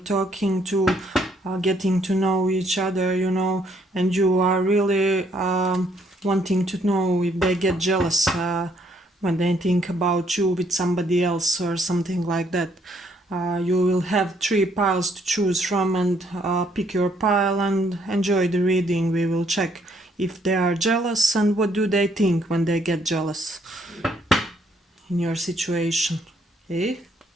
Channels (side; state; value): both; normal; correlation 0.69